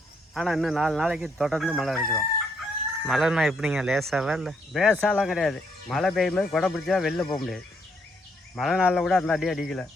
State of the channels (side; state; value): both; normal; correlation 0.73